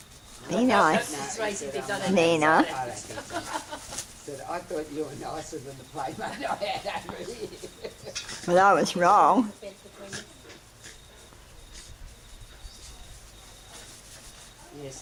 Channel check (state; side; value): identical; both; correlation 1.00